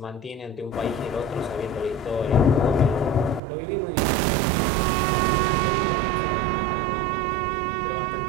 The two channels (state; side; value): drops out; left; at 3.4 s